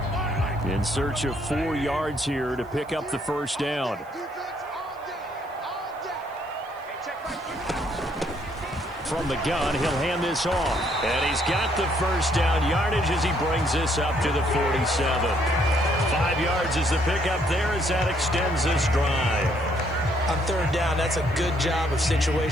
In search of 4 yards here to pick up the first down. From the gun, he'll hand this off. And he's got the first down yardage as he brings this up to the 47. 5 yards is the pickup there as that extends this drive. On third down, that's a good job of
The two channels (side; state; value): right; noise; hiss, 29 dB below the sound